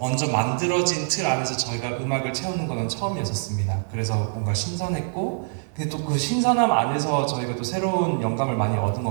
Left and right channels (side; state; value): left; silent; digital silence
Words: 만들어진 틀 안에서 저희가 음악을 채우는 거는 처음이었었습니다. 그래서 뭔가 신선했고 근데 또 그 신선함 안에서 저희가 또 새로운 영감을 많이 얻은